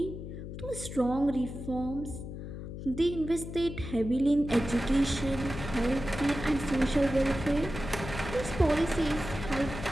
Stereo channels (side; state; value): left; noise; hum, 9 dB below the sound